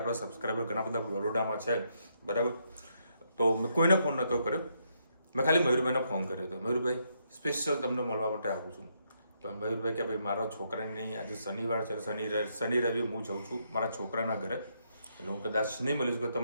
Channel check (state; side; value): inverted; both; correlation -0.76